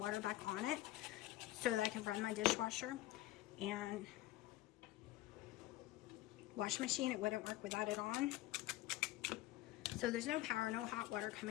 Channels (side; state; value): right; quieter; 16.5 dB